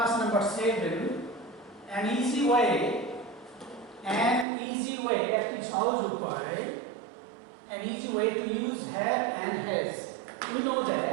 number 7, an easy way at its house an easy way to use have and has. We know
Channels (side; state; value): left; drops out; at 4.5 s